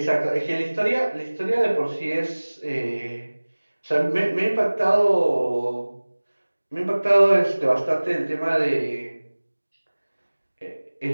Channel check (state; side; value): inverted; both; correlation -1.00